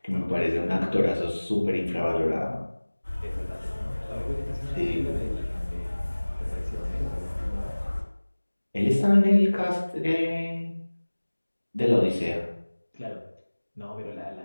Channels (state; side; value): inverted; both; correlation -1.00